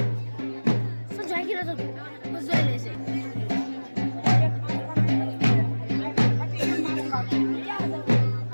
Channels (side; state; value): both; inverted; correlation -1.00